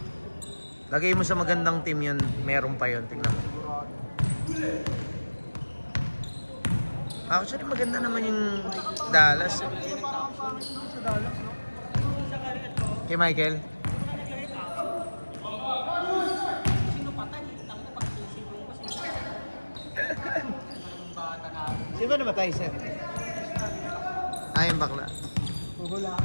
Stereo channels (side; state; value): both; inverted; correlation -1.00